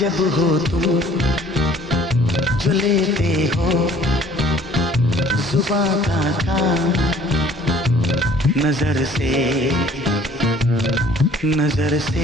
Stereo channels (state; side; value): normal; both; correlation 0.55